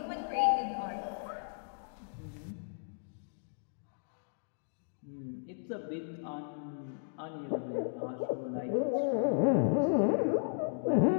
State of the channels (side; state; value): right; silent; digital silence